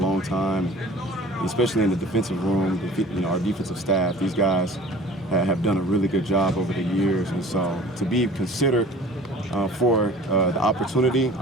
time, especially in the defensive room, our defensive staff. These guys have done a really good job over the years, and so to be considered for the opportunity,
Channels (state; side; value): normal; both; correlation 0.46